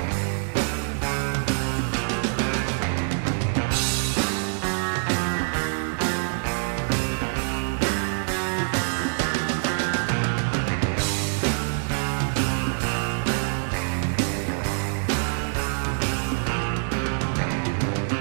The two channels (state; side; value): silent; left; digital silence